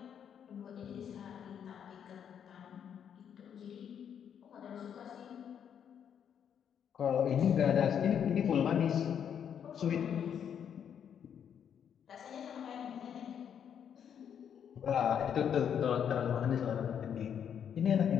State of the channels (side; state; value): right; quieter; 8.4 dB